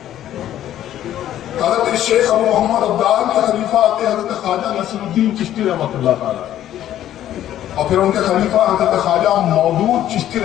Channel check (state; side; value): quieter; right; 12.0 dB